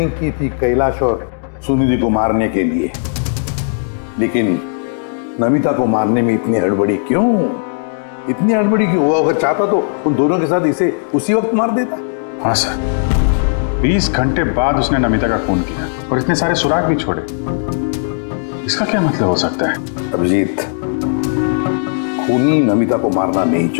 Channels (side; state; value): right; silent; 69 dB below the other